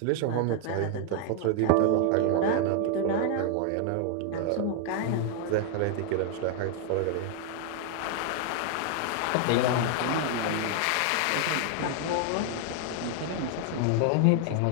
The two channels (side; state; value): both; different; correlation 0.00